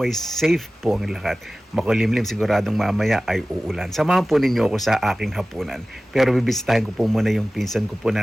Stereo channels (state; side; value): normal; both; correlation 0.97